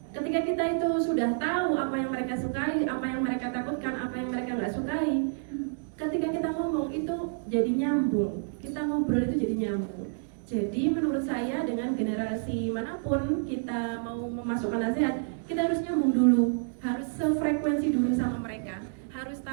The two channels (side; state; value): left; silent; 58 dB below the other